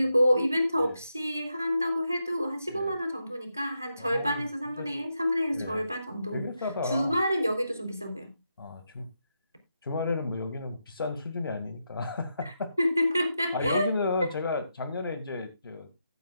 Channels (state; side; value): inverted; both; correlation -0.84